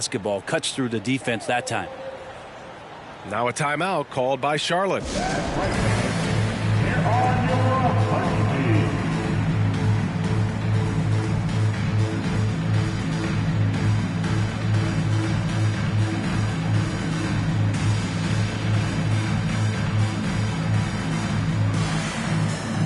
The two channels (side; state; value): both; identical; correlation 1.00